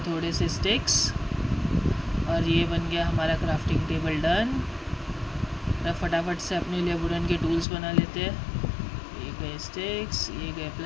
थोड़े से स्टिक्स और ये बन गया हमारा क्राफ्टिंग टेबल डन। अब फटाफट से अपने लिए वुडन के टूल्स बना लेते हैं। ये गए स्टिक्स, ये गए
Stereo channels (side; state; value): right; drops out; at 7.7 s